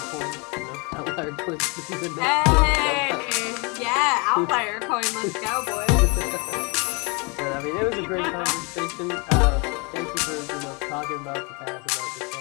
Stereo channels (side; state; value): right; quieter; 31.0 dB